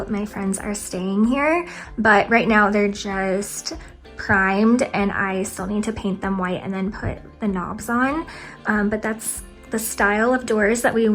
my friends are staying here. But right now they're just primed, and I still need to paint them white and then put the knobs on, but that's the style of doors that we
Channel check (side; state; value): both; identical; correlation 1.00